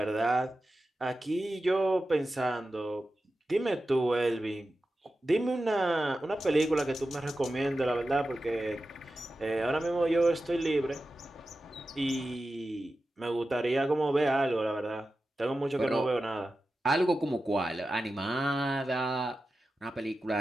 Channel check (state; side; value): normal; both; correlation 0.93